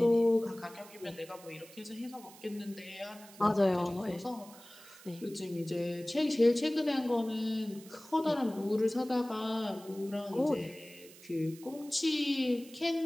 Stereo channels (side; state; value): right; noise; hiss, 20 dB below the sound